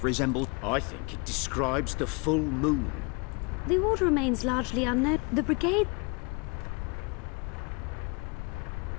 resembles... I think it describes the full moon. The order remains largely unknown. The brigade...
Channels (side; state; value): right; quieter; 30.8 dB